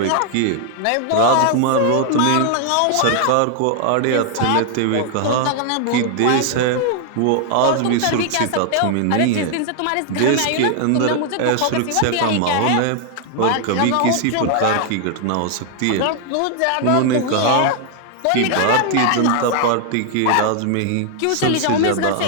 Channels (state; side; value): different; both; correlation 0.00